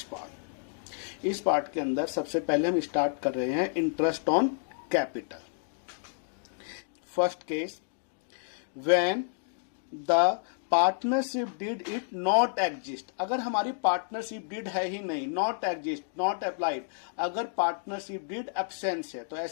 पार्ट। इस पार्ट के अंदर सबसे पहले हम स्टार्ट कर रहे हैं interest on capital. First case, when the partnership did it not exist. अगर हमारी पार्टनरशिप डीड है ही नहीं, नॉट एग्जिस्ट, नॉट अप्लाइड, अगर पार्टनरशिप डीड एब्सेंस है, तो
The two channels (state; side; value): silent; right; digital silence